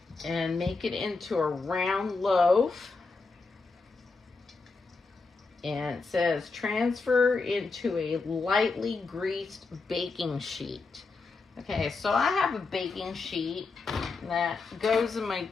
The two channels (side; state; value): right; quieter; 4.1 dB